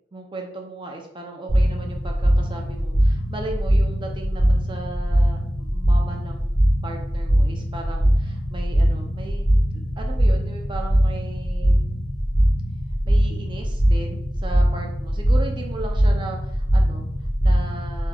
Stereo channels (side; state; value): both; normal; correlation 0.97